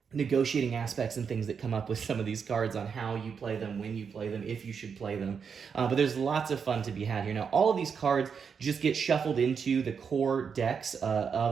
negotiating aspects and things that come up with some of these cards on how you play them, when you play them, if you should play them. But there's lots of fun to be had here. Now, all of these cards just get shuffled into the core decks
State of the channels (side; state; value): left; quieter; 6.4 dB